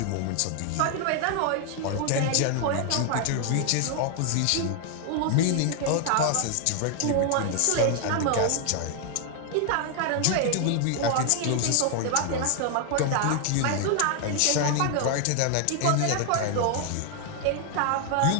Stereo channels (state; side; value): different; both; correlation 0.00